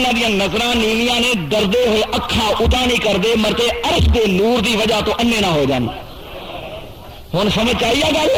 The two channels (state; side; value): identical; both; correlation 1.00